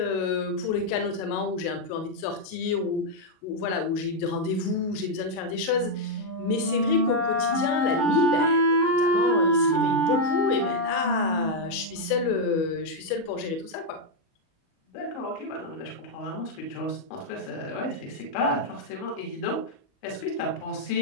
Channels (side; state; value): right; late; 37 ms